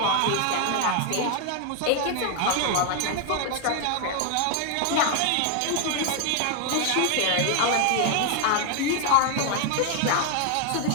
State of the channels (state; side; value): different; both; correlation 0.01